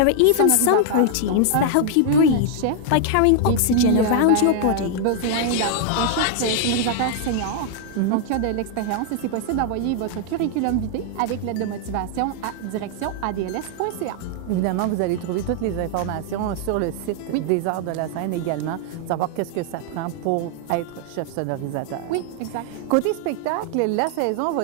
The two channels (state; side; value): different; both; correlation 0.00